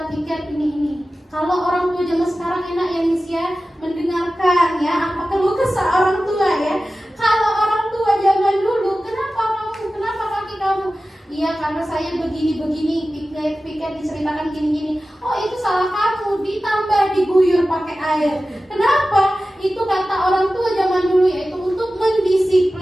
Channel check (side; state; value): both; normal; correlation 0.95